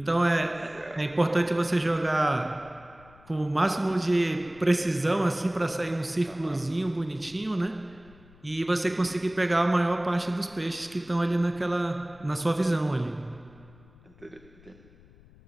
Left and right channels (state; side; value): noise; left; rumble, 25 dB below the sound